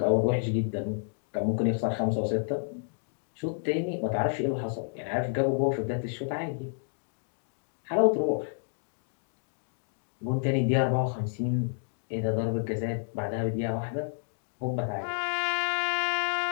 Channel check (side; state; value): right; silent; digital silence